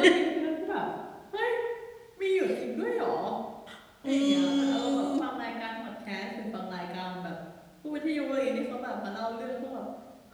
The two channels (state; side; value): identical; both; correlation 1.00